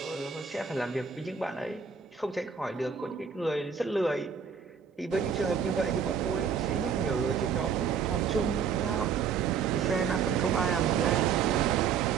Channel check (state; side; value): quieter; left; 6.6 dB